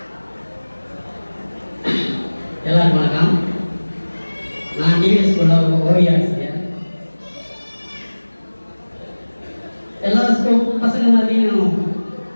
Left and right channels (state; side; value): inverted; both; correlation -1.00